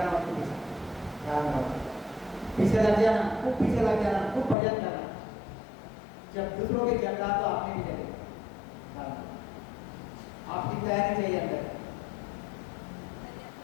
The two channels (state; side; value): drops out; right; at 4.5 s